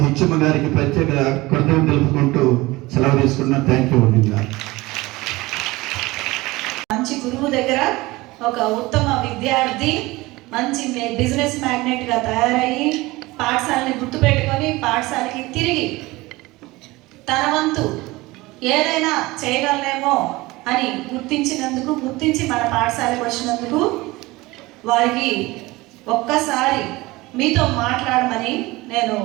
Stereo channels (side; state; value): left; quieter; 20.7 dB